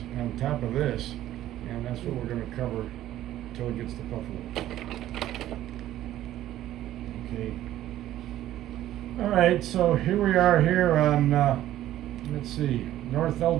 on top of this, and that's what we're going to cover until it gets to Buffalo. Okay. All right, so here we are here on, let's see, North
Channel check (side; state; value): left; quieter; 13.4 dB